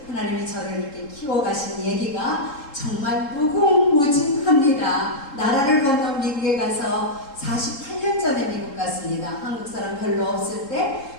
하나님이 저를 이렇게 키워가신 얘기가 정말 무궁무진합니다. 나라를 건너 미국에 가서 48년 전에 미국 갔습니다. 한국 사람 별로 없을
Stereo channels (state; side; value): late; right; 3.7 ms